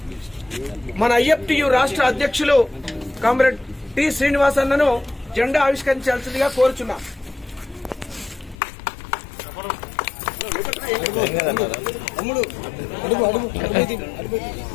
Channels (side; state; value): right; drops out; at 8.6 s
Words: మన ఐఎఫ్టియు రాష్ట్ర అధ్యక్షులు కామ్రేడ్ టి శ్రీనివాస్ అన్నను జెండా ఆవిష్కరించాల్సిందిగా కోరుచున్నాం.